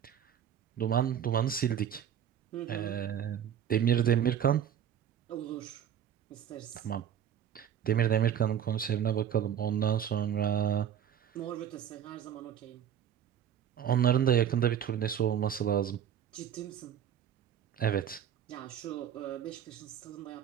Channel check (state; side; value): quieter; left; 9.4 dB